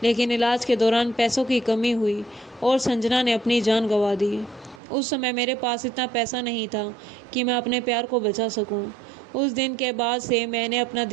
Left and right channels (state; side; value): drops out; left; at 4.8 s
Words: लेकिन इलाज के दौरान पैसों की कमी हुई और संजना ने अपनी जान गंवा दी। उस समय मेरे पास इतना पैसा नहीं था कि मैं अपने प्यार को बचा सकूं। उस दिन के बाद से मैंने अपना